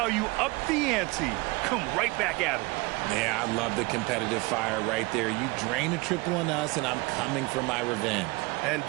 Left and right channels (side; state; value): left; quieter; 24.7 dB